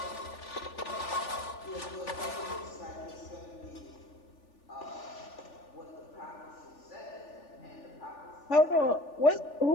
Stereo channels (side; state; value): right; late; 3.4 ms